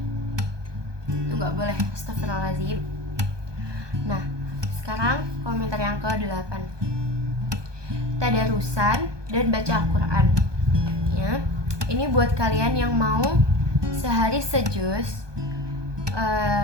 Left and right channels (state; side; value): late; left; 1.2 ms